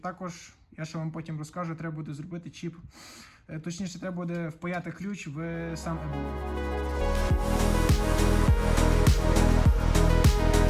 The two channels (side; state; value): both; identical; correlation 1.00